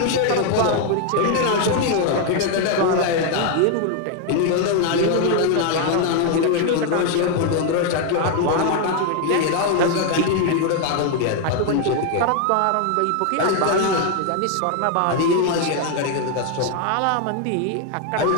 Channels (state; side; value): different; both; correlation 0.00